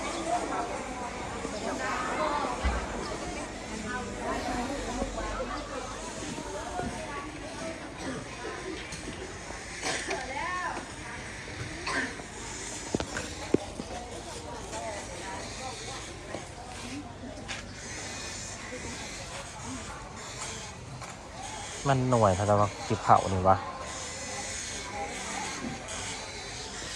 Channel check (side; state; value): both; identical; correlation 1.00